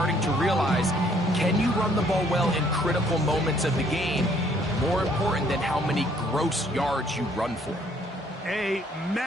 to realize. Can you run the ball well in critical moments of the game? More important than how many gross yards you run for. A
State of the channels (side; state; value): both; normal; correlation 0.64